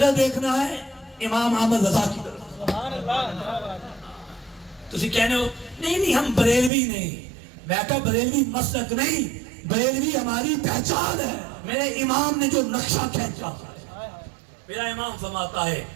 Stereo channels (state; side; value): drops out; left; at 6.7 s